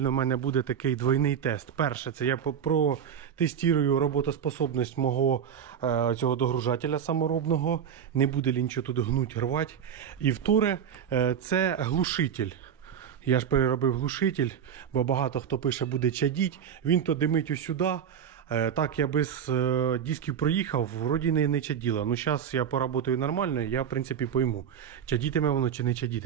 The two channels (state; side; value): quieter; left; 8.3 dB